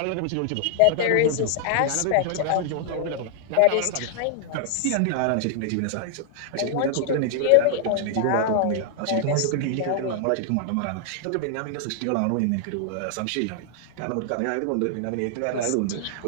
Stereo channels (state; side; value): different; both; correlation 0.00